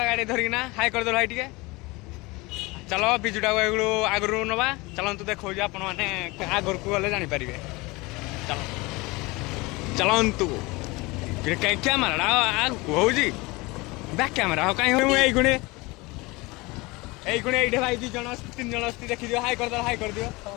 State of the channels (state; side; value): quieter; right; 23.7 dB